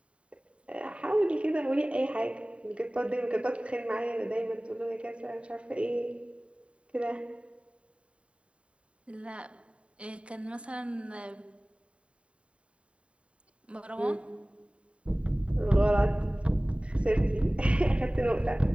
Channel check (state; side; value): late; left; 0.060 ms